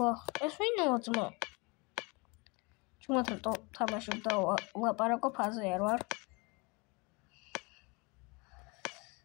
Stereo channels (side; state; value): right; quieter; 28.2 dB